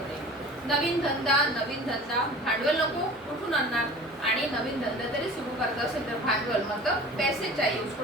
नवीन धंदा, भांडवल नको, कुठून आणणार? आणि नवीन धंदा तरी सुरू करता असेल तर भांडवल मतलब पैसे चाहिए,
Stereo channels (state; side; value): normal; both; correlation 0.41